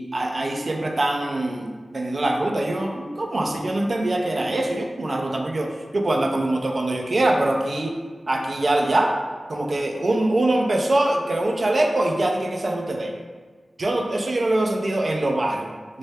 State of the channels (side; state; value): both; normal; correlation 0.96